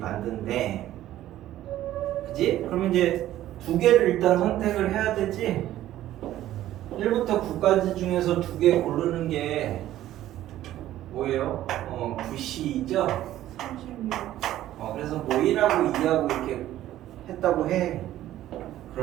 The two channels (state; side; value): quieter; left; 13.5 dB